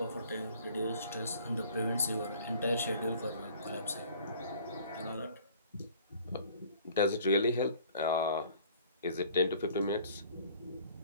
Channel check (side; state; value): both; inverted; correlation -0.52